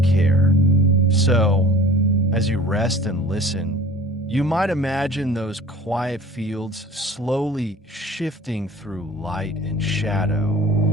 So, as you rest and listen, you might imagine those quiet fields slowly shifting through light and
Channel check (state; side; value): normal; both; correlation 0.45